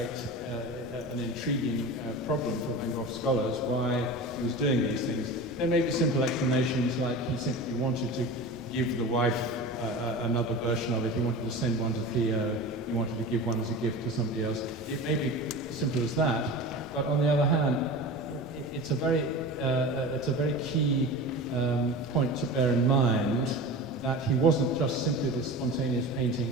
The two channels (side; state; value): both; normal; correlation 0.32